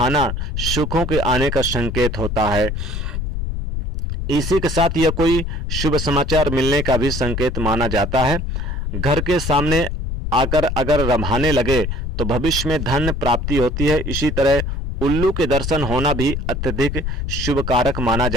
सुखों के आने का संकेत होता है। इसी के साथ यह कोई शुभ समाचार मिलने का भी संकेत माना जाता है। घर के सामने आकर अगर रभाने लगे तो भविष्य में धन प्राप्ति होती है। इसी तरह उल्लू के दर्शन होना भी अत्यधिक शुभ कारक माना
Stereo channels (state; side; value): noise; left; rumble, 3 dB below the sound